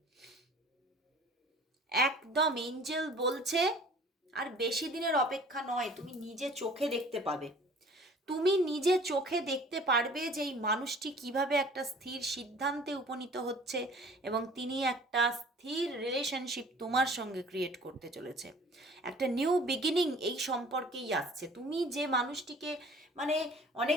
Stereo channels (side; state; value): both; normal; correlation 0.49